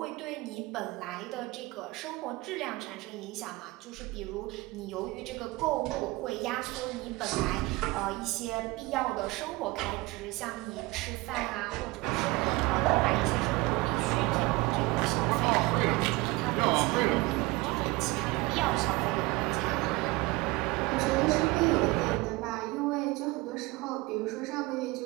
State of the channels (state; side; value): quieter; left; 22.2 dB